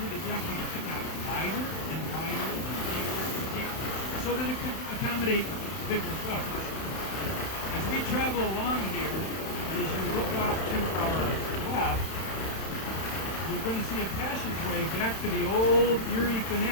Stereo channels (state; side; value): late; right; 31 ms